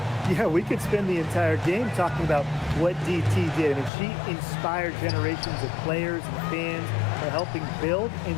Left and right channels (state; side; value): drops out; right; at 3.9 s